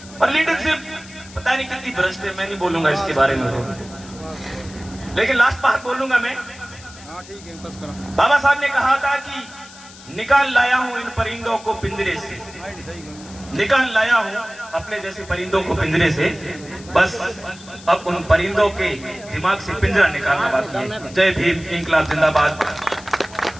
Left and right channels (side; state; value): left; noise; hiss, 19 dB below the sound